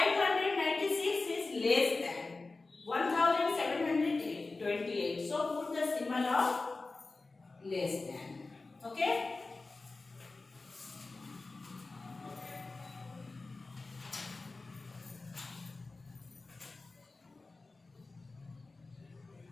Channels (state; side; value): quieter; right; 3.6 dB